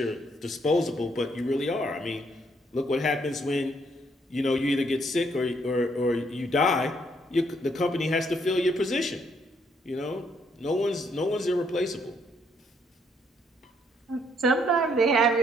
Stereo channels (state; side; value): normal; both; correlation 0.70